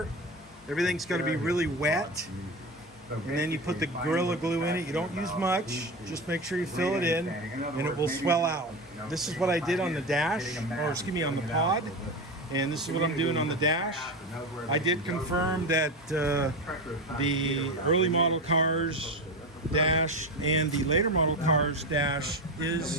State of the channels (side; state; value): both; normal; correlation 0.21